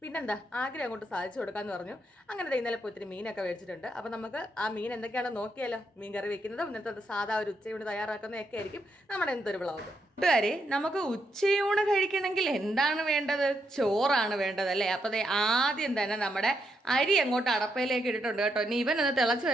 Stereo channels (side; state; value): both; normal; correlation 0.80